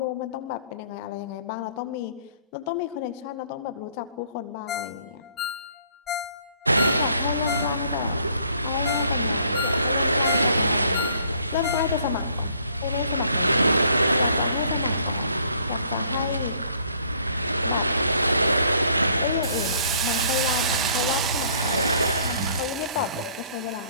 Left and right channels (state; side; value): inverted; both; correlation -0.61